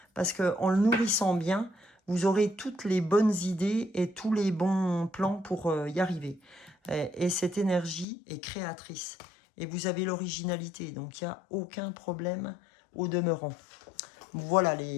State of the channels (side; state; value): right; drops out; at 8.1 s